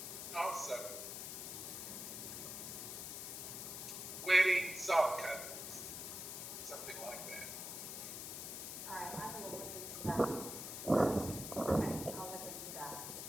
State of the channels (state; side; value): noise; left; hiss, 6 dB below the sound